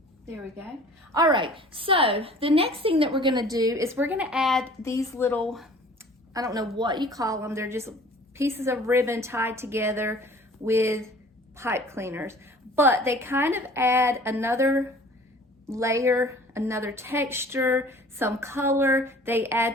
there we go. All right, so the next thing that we're gonna do is we're gonna add these little, I don't know what you call them, they're just pieces of ribbon tied together with pipe cleaners, but they kind of add another layer, another texture, some color. They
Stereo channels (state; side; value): normal; both; correlation 0.48